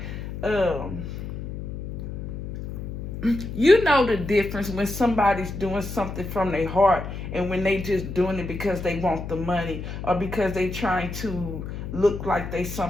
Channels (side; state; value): left; noise; hum, 7 dB below the sound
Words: you know the difference when somebody's doing something from their heart and when they just doing it because they want the money or because they trying to look like they